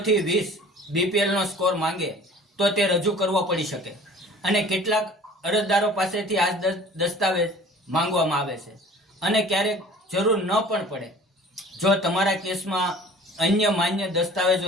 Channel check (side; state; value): both; normal; correlation 0.47